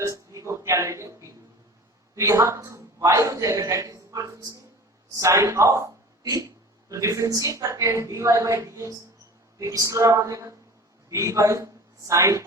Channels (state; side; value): normal; both; correlation 0.40